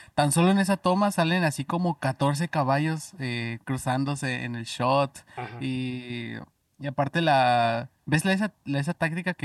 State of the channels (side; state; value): both; identical; correlation 1.00